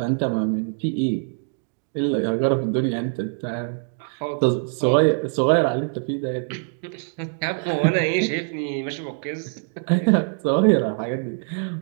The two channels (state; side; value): silent; left; 63 dB below the other